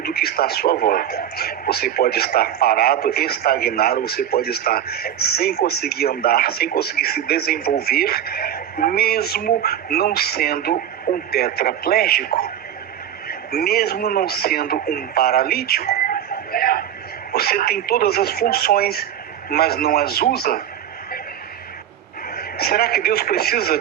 que está à sua volta. Você pode estar parado, estagnado, você pode estar sem conseguir andar, sem conseguir se desenvolver, mesmo não sendo um tetraplégico, mesmo não sendo um paralítico. Você tem todas as funções, mas não as usa. Será que Deus precisa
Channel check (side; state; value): left; quieter; 10.2 dB